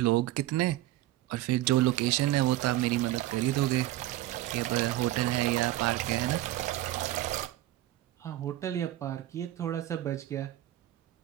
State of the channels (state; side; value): quieter; left; 15.1 dB